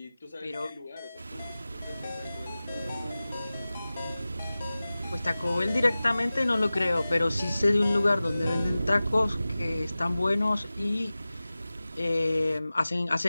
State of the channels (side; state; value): both; inverted; correlation -0.97